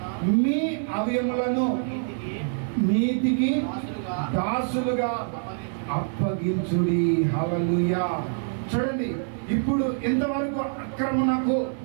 మీ అవయములను నీతికి దాసులుగా అప్పగించుడి. హల్లెలూయా. చూడండి, ఇప్పుడు ఇంతవరకు అక్రమణకు,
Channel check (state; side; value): silent; left; digital silence